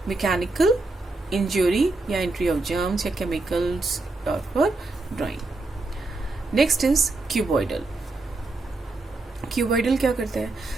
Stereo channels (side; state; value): left; quieter; 3.2 dB